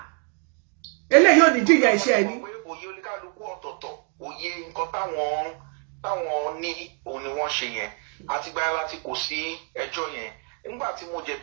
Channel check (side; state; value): left; quieter; 39.1 dB